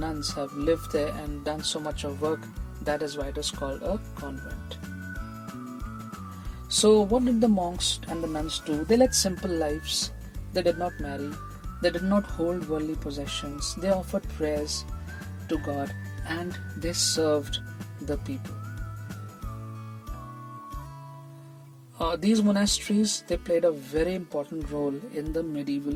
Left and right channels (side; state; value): both; identical; correlation 1.00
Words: have lived there and done so much of work. That is why it is called a convent. So what did the monks and the nuns do? They led simple lives. They did not marry. They did not hold worldly possessions. They offered prayers to God, and they served the people. These monasteries, they played a very important role in the medieval